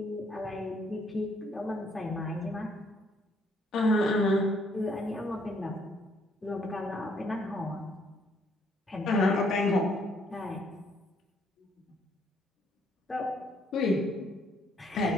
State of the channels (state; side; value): normal; both; correlation 0.67